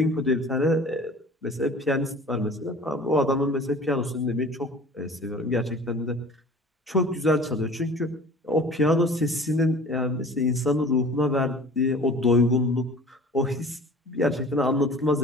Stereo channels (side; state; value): both; normal; correlation 0.44